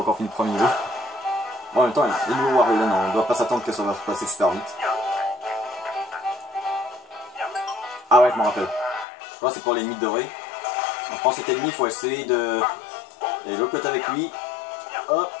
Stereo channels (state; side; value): drops out; right; at 9.1 s